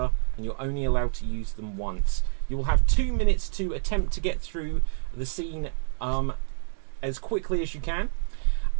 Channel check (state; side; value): silent; left; digital silence